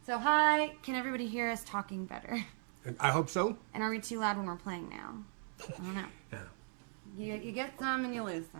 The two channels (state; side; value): silent; left; 53 dB below the other